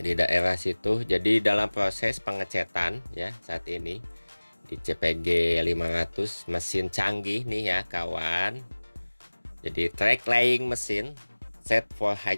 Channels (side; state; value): both; inverted; correlation -1.00